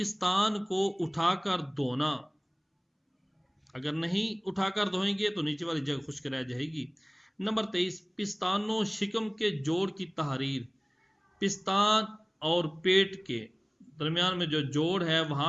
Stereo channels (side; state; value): both; identical; correlation 1.00